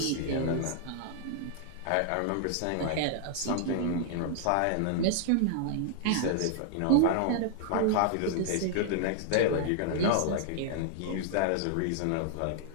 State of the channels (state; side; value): different; both; correlation -0.01